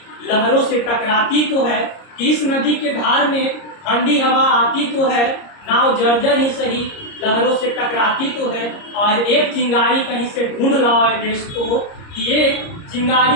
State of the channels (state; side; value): late; right; 30 ms